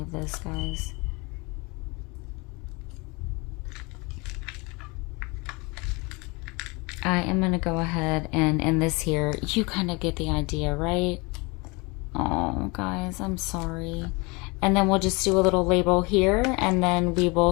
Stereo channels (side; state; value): right; quieter; 27.3 dB